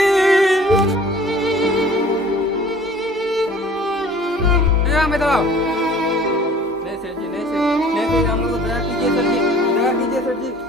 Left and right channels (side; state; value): both; normal; correlation 0.49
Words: मैं दबाओ नहीं सेठ जी, नहीं सेठ, हम लोग को दया कीजिए सेठ जी, दया कीजिए सेठ जी।